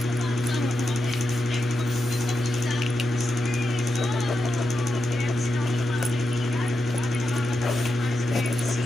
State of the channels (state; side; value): normal; both; correlation 0.87